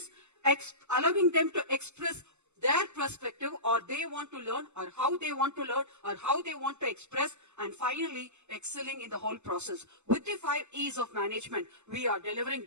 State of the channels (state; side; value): late; left; 0.83 ms